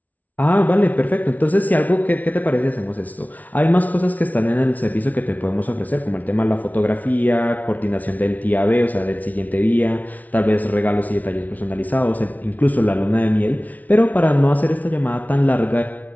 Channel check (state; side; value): late; right; 0.074 ms